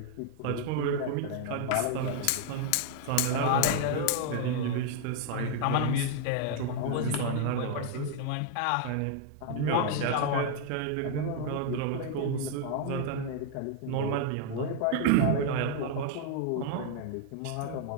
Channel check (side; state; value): both; different; correlation 0.00